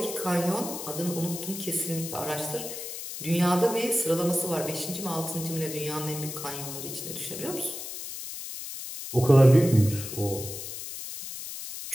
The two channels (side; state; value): left; noise; hiss, 8 dB below the sound